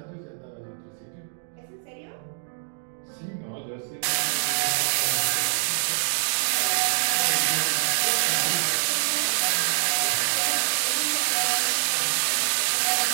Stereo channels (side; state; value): left; silent; digital silence